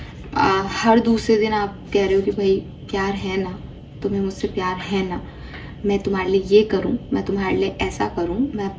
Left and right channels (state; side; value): identical; both; correlation 1.00